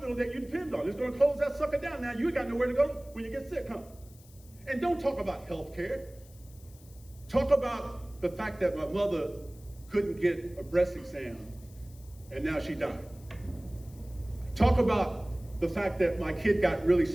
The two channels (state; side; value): noise; left; hiss, 25 dB below the sound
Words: that you depend on. It's going to close that sucker down. Now you got nowhere to go when you get sick, huh? And don't talk about health care. Talk about the fact that my mother couldn't get a breast exam and now she died. Talk about the fact that my kid got really